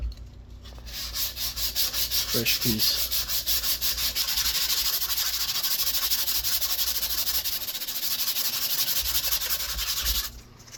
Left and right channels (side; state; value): both; identical; correlation 1.00